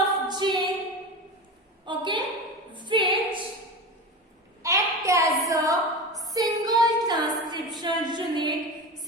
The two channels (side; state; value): both; normal; correlation 0.26